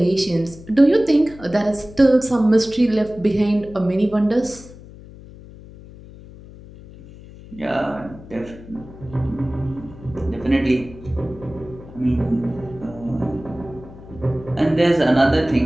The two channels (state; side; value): noise; left; hum, 18 dB below the sound